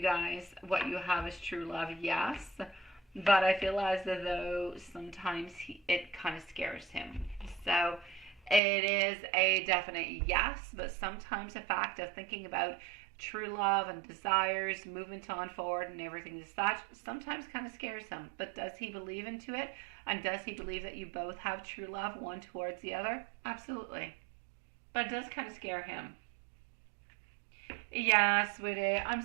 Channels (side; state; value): left; drops out; at 8.6 s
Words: guys, what you have is true love? Yes. But I feel as though sometimes it kind of scares him. So it is a definite yes, but sometimes the fact of thinking about true love and desires, movement on forward and everything as such, sometimes kind of scares him. But does he believe into it? And does he believe that you both have true love, one towards the other? Absolutely. But it does kind of scare him. Yeah, sweetie. I'm